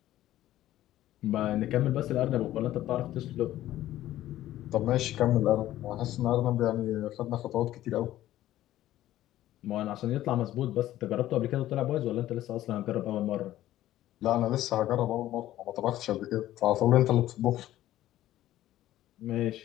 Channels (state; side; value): quieter; right; 14.0 dB